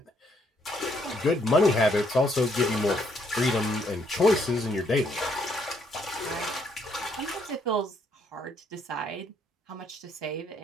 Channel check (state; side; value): normal; both; correlation 0.71